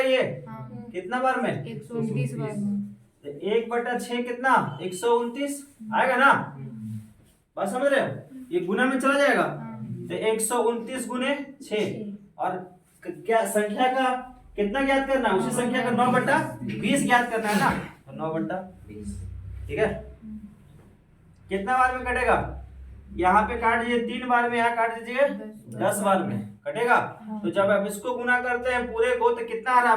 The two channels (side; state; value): both; identical; correlation 1.00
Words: ये कितना बार में? 129 बार में। तो 1/6 कितना? 129 आएगा ना? बात समझ रहे हो? ये गुना में चला जाएगा। तो 129 गुने 6 और क्या संख्या का कितना ज्ञात करना है? उसी संख्या का 9/20 ज्ञात करना है ना? तो 9/20 ठीक है। कितना बार में कटेगा? यहाँ पे काट दीजिए 3 बार में, यहाँ काट दीजिए 10 बार में कटेगा। तो जब आप इसको गुना करते हैं पूरे को तो कितना आ रहा